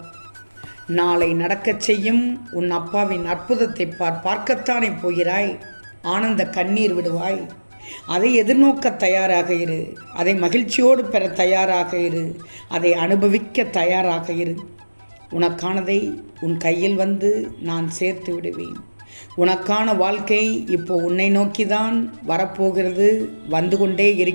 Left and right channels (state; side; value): inverted; both; correlation -1.00